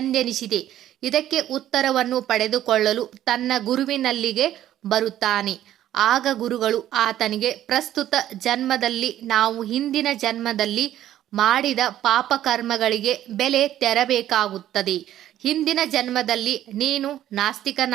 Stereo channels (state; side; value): quieter; left; 12.3 dB